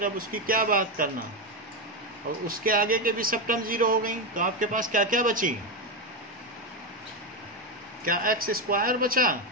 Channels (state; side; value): normal; both; correlation 0.10